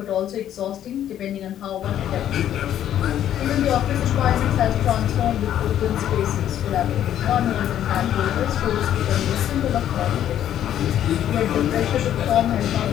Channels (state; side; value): quieter; right; 10.9 dB